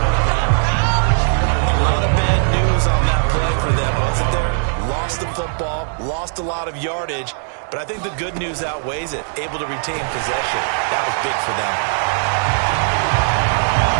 A lot of bad news on that play for them, wasn't there? Lost the football, lost a lot of yardage, but I think the good news outweighs it. Able to retain possession. That was big for them.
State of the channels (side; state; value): left; silent; 63 dB below the other